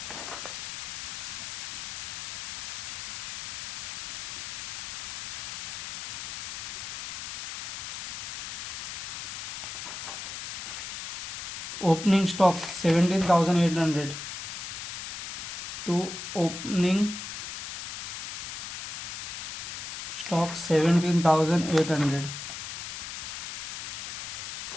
Opening stock 17,800. To opening stock 17,800.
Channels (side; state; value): left; noise; hiss, 6 dB below the sound